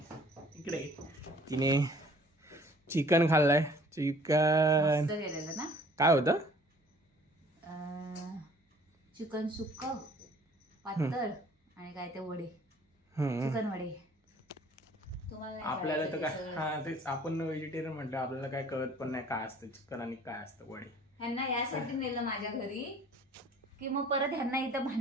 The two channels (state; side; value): normal; both; correlation 0.54